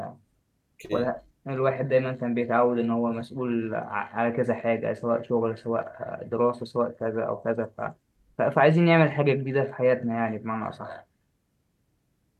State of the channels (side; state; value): both; identical; correlation 1.00